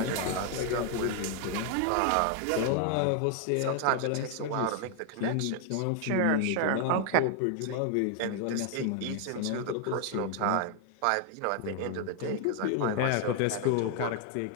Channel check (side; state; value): both; different; correlation 0.00